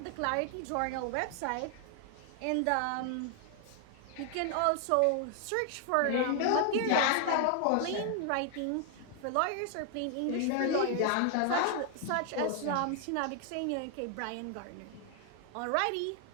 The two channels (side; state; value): both; different; correlation 0.00